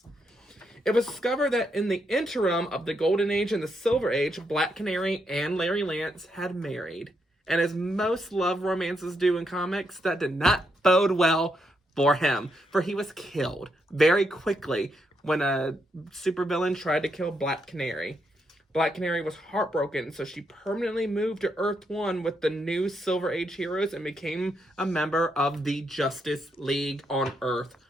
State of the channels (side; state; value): both; normal; correlation 0.79